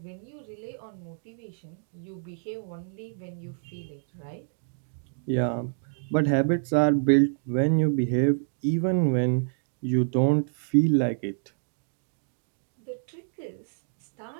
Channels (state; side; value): silent; left; digital silence